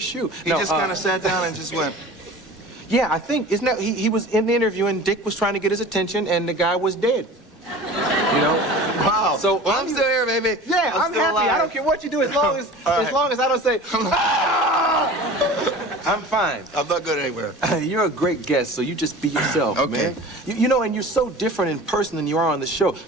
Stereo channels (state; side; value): normal; both; correlation 0.39